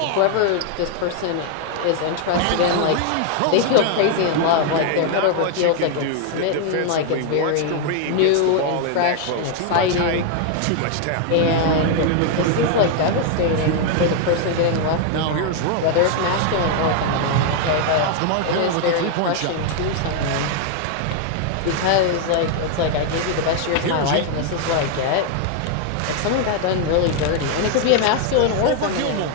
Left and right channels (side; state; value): both; different; correlation 0.00